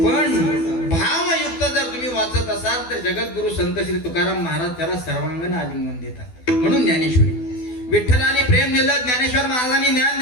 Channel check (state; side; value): late; right; 12 ms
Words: भावयुक्त जर तुम्ही वाचत असाल तर जगद्गुरु संत श्री तुकाराम महाराज त्याला सर्वांगण आलिंगन देतात. म्हणून ज्ञानेश्वरी. विठ्ठलाने प्रेम दिलं, ज्ञानेश्वर महाराजांनी ज्ञान